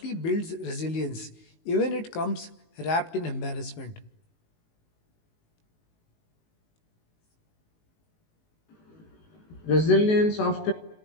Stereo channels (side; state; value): right; late; 19 ms